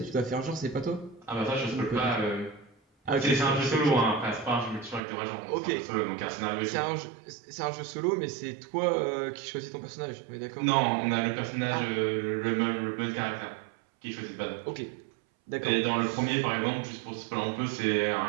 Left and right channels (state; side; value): drops out; left; at 5.0 s